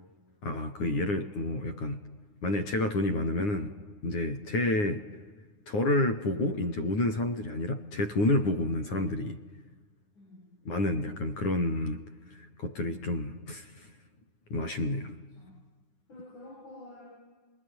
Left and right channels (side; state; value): right; late; 9.7 ms